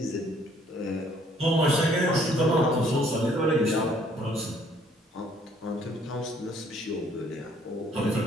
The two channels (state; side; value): normal; both; correlation 0.62